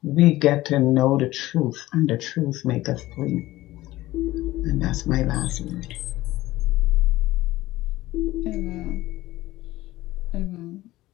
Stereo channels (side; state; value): right; quieter; 17.1 dB